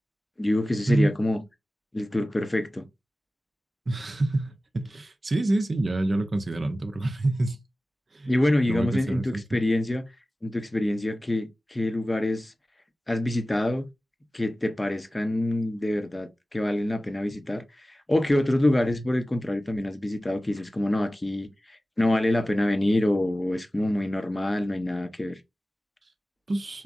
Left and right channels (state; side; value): normal; both; correlation 0.96